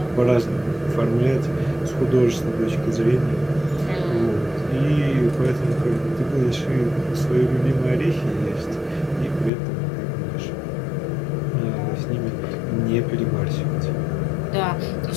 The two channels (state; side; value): drops out; right; at 9.5 s